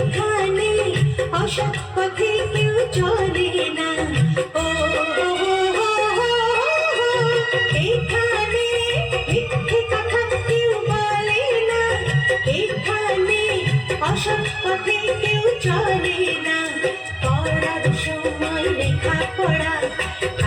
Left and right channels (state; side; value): identical; both; correlation 1.00